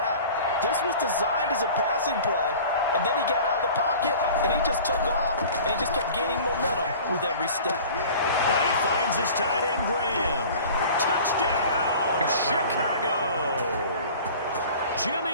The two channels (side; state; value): both; inverted; correlation -0.42